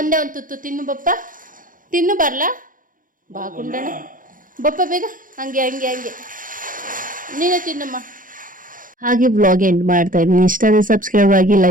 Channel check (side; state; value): left; late; 0.39 ms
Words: ಒಂದು ತುತ್ತು ತಿನ್ನು ಬಪ್ಪ, ತಿನ್ನು ಬರ್ಲಾ ಬಾ ಗುಂಡಣ್ಣ ಬಪ್ಪ ಬೇಗ. ಹಂಗೆ ನೀನು ತಿನ್ನಮ್ಮ. ಹಾಗೆ ವ್ಲಾಗ್ ಎಂಡ್ ಮಾಡ್ತಾ ಇದ್ದೀನಿ. ಇಷ್ಟ ಆದರೆ ಸಬ್ಸ್ಕ್ರೈಬ್ ಆಗಿ,